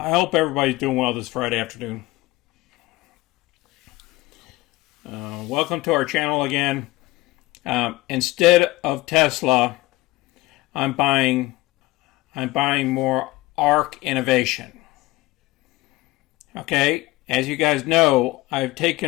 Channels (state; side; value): quieter; right; 19.3 dB